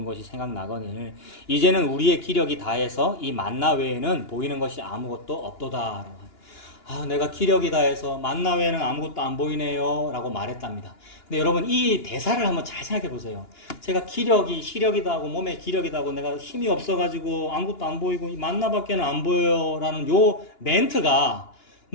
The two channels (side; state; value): right; late; 2.9 ms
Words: 것이 생각나거늘 이제는 우리의 기력이 다해서 이 만나 외에는 보이는 것이 아무것도 없도다. 아, 내가 기력이 다해서 만나 외에는 아무것도 안 보이네요 라고 말했답니다. 근데 여러분 이 대사를 한번 잘 생각해 보세요. 제가 시력이다 하고 몸에 기력이다 하고 내가 힘이 없어가지고 아무것도 안 보이고 이 만나밖에는 안 보여요 라는 요 멘트가